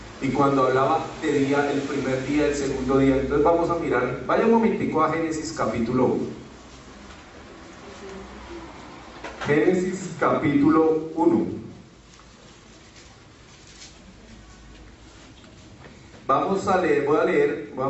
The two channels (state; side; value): identical; both; correlation 1.00